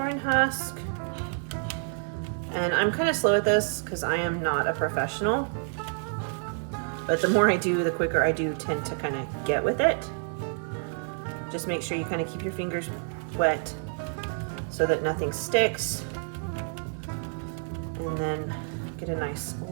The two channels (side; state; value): left; silent; 56 dB below the other